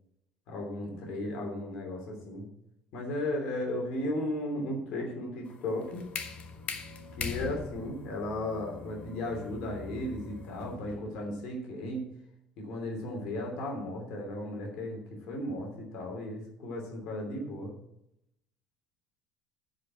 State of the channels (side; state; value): both; normal; correlation 0.49